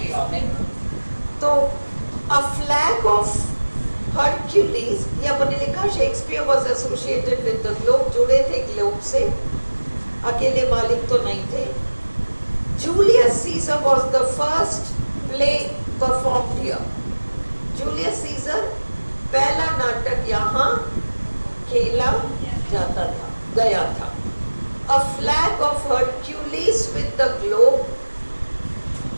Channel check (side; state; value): both; inverted; correlation -1.00